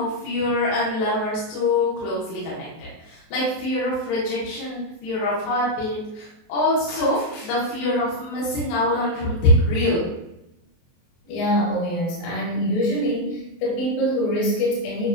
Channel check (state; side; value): late; right; 23 ms